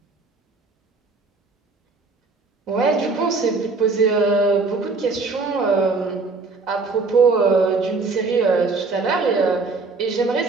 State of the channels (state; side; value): quieter; left; 4.0 dB